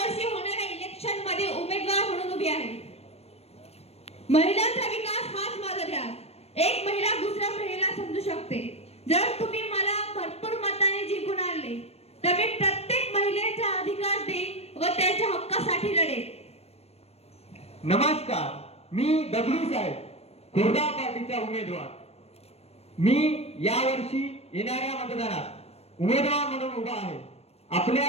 होणाऱ्या इलेक्शन मध्ये उमेदवार म्हणून उभी आहे. महिलांचा विकास हाच माझा ध्यास. एक महिला दुसऱ्या महिलेला समजू शकते. जर तुम्ही मला भरपूर मताने जिंकून आणले तर मी प्रत्येक महिलेचा अधिकार देईन व त्यांच्या हक्कासाठी लढेन. नमस्कार, मी दगडू साहेब, खुर्दा पार्टीचा उमेदवार. मी यावर्षी येणाऱ्या मतदानात उमेदवार म्हणून उभा आहे. आपल्या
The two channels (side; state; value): right; late; 0.30 ms